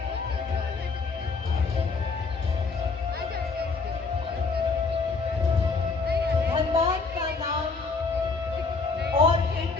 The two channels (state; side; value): quieter; right; 4.3 dB